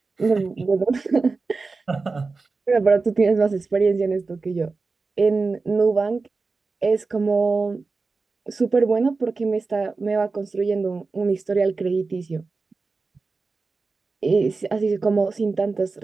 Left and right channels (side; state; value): left; quieter; 4.1 dB